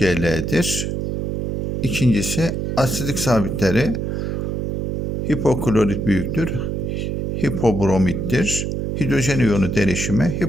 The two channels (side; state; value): right; noise; hum, 1 dB below the sound